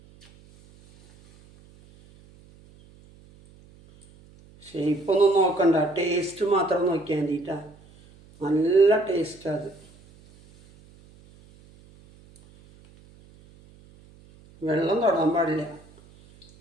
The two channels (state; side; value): noise; right; hum, 26 dB below the sound